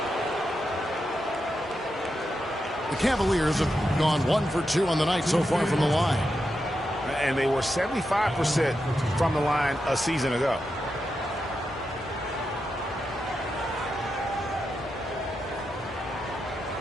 The Cavaliers have gone 1 for 2 on the night so far from the line. And they were 75% from the line a season ago.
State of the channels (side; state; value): both; normal; correlation 0.87